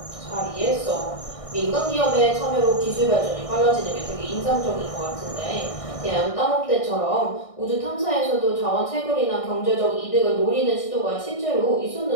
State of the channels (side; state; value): right; late; 1.6 ms